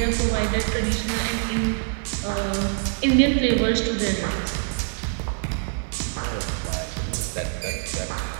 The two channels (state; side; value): silent; left; digital silence